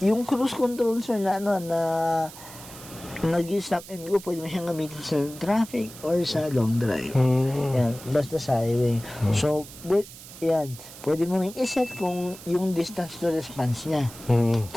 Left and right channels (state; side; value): noise; right; hiss, 16 dB below the sound